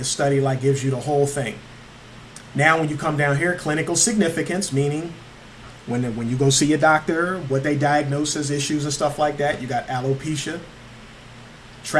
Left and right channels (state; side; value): identical; both; correlation 1.00